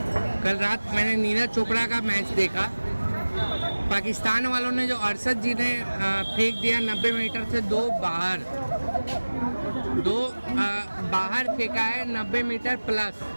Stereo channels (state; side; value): inverted; both; correlation -1.00